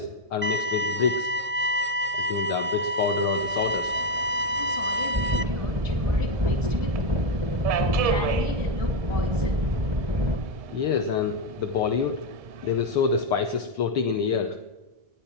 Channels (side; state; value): left; late; 1.6 ms